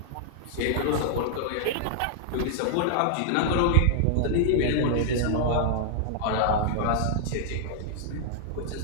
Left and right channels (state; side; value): different; both; correlation -0.01